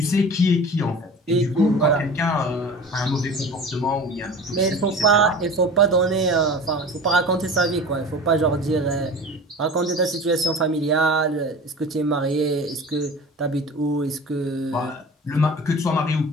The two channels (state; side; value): normal; both; correlation 0.37